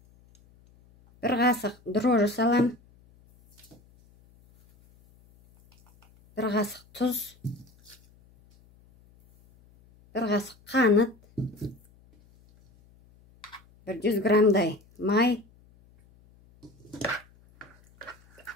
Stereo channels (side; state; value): left; noise; hum, 29 dB below the sound